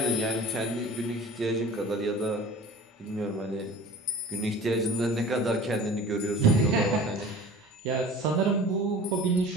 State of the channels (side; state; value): both; normal; correlation 0.41